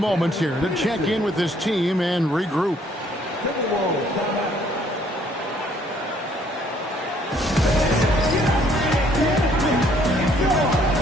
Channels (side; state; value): both; normal; correlation 0.63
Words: here to check in with his team and regroup.